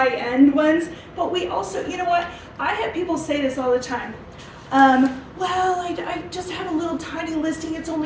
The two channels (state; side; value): identical; both; correlation 1.00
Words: ones. But we also, you know what? I have people say this all the time. Well, I just have a little tiny listing. It's